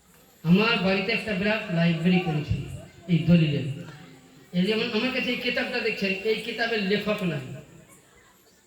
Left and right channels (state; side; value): identical; both; correlation 1.00